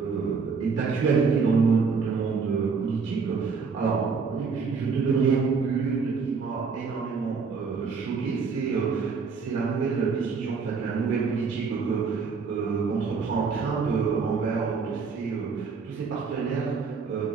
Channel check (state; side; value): quieter; left; 5.2 dB